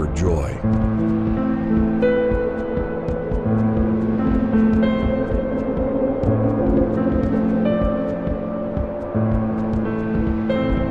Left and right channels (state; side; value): identical; both; correlation 1.00